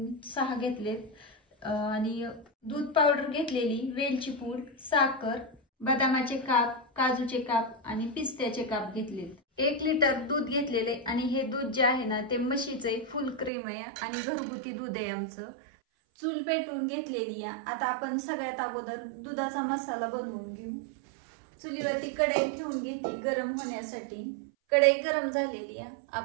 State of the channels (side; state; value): left; drops out; at 13.5 s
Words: 6 घेतलेत आणि दूध पावडर घेतलेली, वेलची पूड, साखर, बदामाचे काप, काजूचे काप आणि पिस्त्याचे काप घेतलेत। 1 लिटर दूध घेतलेले आणि हे दूध जे आहे ना ते म्हशीचे फुल क्रीम आहे आणि घरगुती दूध आहे आमचं। चूल पेटवून घेतलेली आहे। आता आपण सगळ्यात अगोदर दुधाचा मसाला बनवून घेऊ। चुलीवरती कढई ठेवून घेतली गरम होण्यासाठी। कढई गरम झालेली आहे,